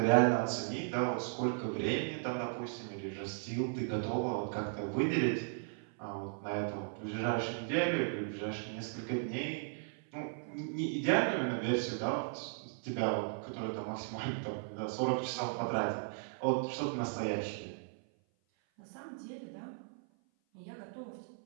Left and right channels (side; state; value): left; silent; 53 dB below the other